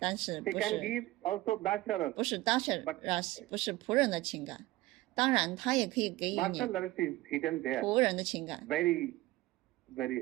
是 He 不 can 是 give also dasharas. 不是 Dasharas， 不是仆人的情感，当然他也可以给予你 Dasharas is hidden there. 仆人的情感， Very,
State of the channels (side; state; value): left; quieter; 17.9 dB